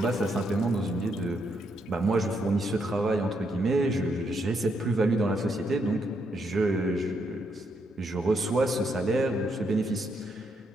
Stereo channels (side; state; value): both; normal; correlation 0.77